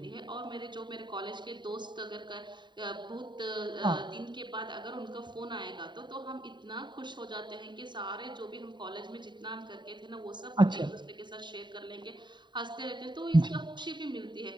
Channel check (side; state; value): left; late; 0.22 ms